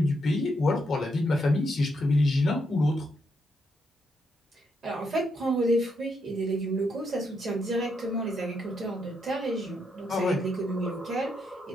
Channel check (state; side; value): normal; both; correlation 0.79